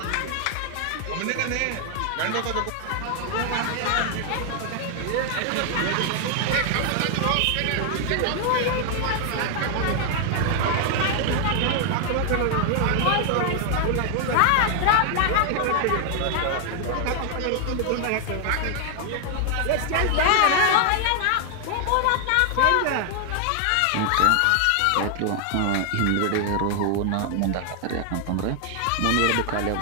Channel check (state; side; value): different; both; correlation 0.00